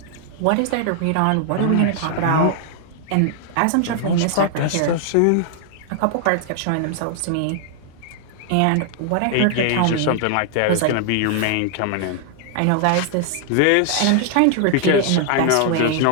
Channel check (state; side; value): different; both; correlation 0.00